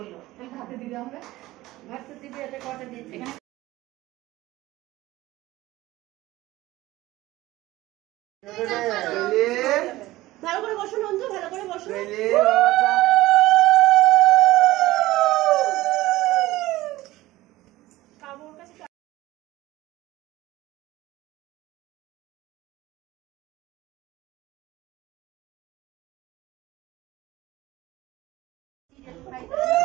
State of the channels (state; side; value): quieter; left; 17.6 dB